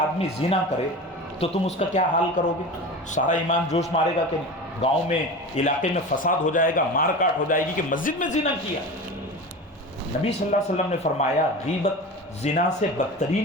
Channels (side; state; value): both; normal; correlation 0.30